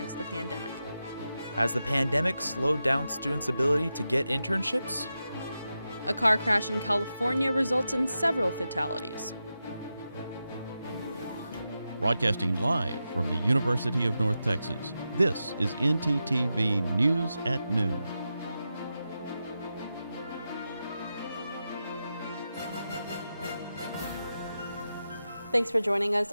the pandemic. Has the pandemic slowed down students' ability to get internships? A car crash in California results in several fatalities. Broadcasting live from the University of North Texas, this is ntTV News at Noon. Thanks for joining us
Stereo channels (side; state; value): both; inverted; correlation -0.89